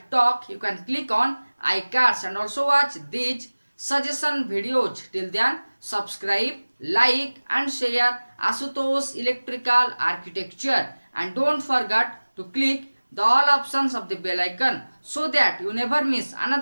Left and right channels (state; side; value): inverted; both; correlation -1.00